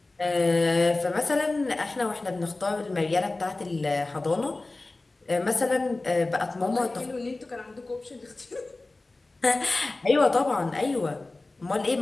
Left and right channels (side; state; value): right; quieter; 3.1 dB